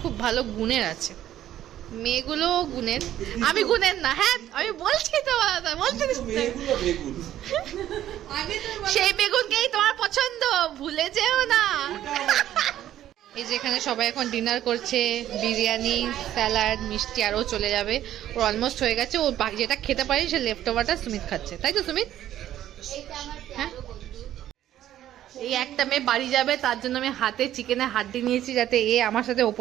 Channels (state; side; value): quieter; left; 12.2 dB